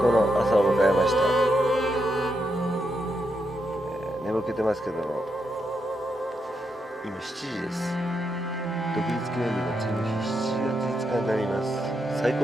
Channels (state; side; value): normal; both; correlation 0.83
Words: の朝を迎えました。眠気てますけども、今7時です。独立記念日の次の日、7月5日になります。最高